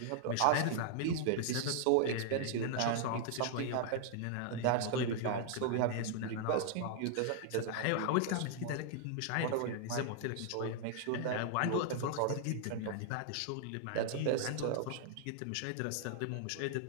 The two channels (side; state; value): both; different; correlation 0.00